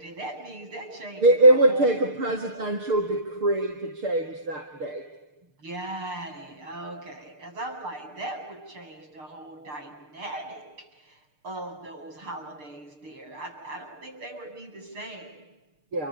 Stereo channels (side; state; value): left; late; 6.6 ms